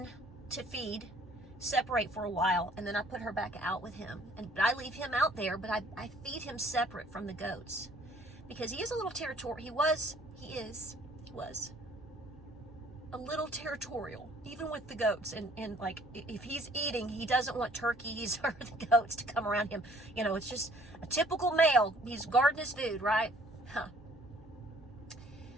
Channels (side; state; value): both; normal; correlation 0.58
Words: to feed, separate for a while, and then I put her back out with him. And I leave him out there, but I feed him separate from the goats. Because he is a little territorial. He was a little territorial, even with the goats. And like, if he's eating, he doesn't want turkeys or the goats to come around him. You know, it's just a typical male. He's guarding his food, right? Huh.